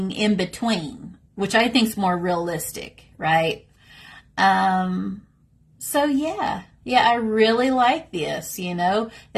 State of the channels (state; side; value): identical; both; correlation 1.00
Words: in between, which I think is more realistic, right? So yeah, I really like this, you know,